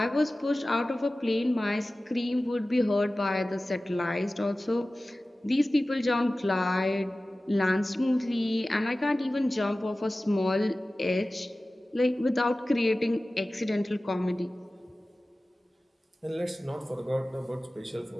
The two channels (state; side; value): normal; both; correlation 0.96